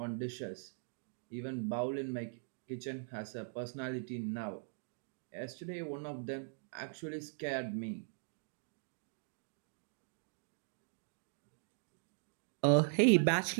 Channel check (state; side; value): silent; left; digital silence